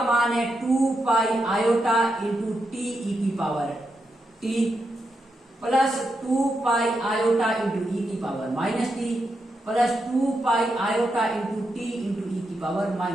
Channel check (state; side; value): normal; both; correlation 0.84